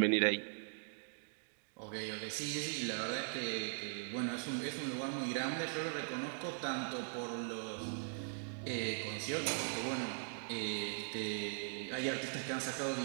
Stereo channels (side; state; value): left; silent; digital silence